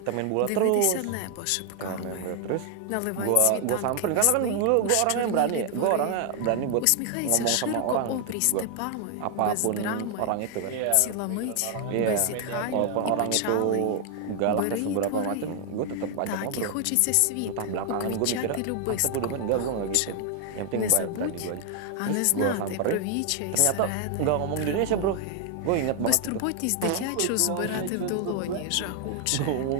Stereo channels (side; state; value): both; different; correlation 0.00